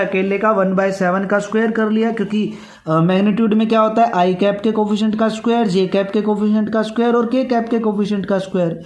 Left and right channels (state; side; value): identical; both; correlation 1.00